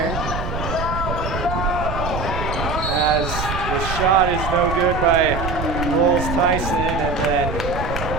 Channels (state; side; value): noise; right; rumble, 5 dB below the sound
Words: As the shot is no good by Rolls Tyson, and then